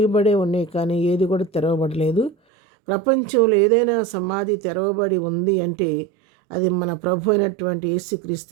ఉన్నాయి, కానీ ఏది కూడా తెరవబడలేదు. ప్రపంచంలో ఏదైనా సమాధి తెరవబడి ఉంది అంటే అది మన ప్రభు అయినటువంటి యేసుక్రీస్తు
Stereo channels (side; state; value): left; drops out; at 2.4 s